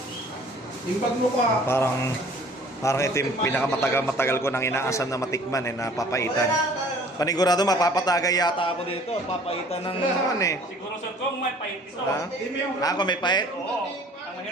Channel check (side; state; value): both; normal; correlation 0.52